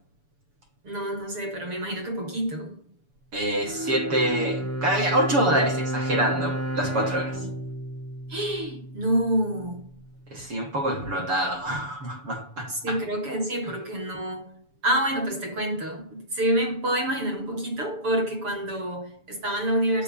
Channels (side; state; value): left; late; 7.0 ms